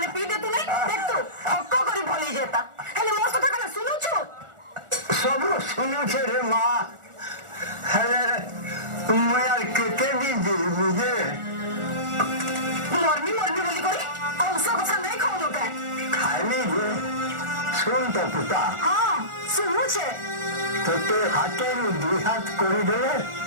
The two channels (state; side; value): late; left; 1.4 ms